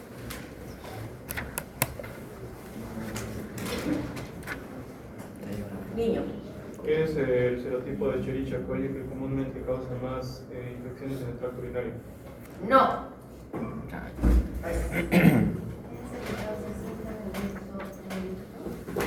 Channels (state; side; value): identical; both; correlation 1.00